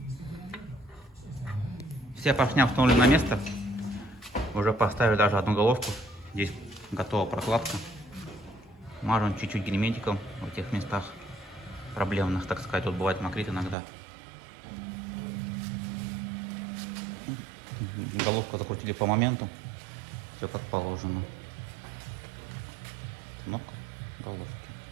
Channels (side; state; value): left; drops out; at 13.8 s